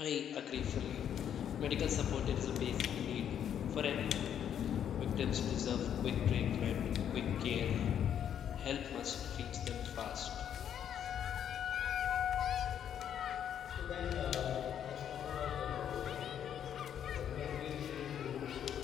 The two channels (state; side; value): quieter; right; 9.3 dB